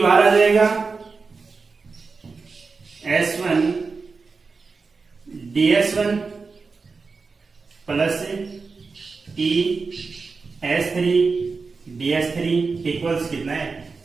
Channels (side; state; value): left; quieter; 4.5 dB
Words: बाहर आ जाएगा, S1 ds1 plus e S3 ds3 equals कितना है,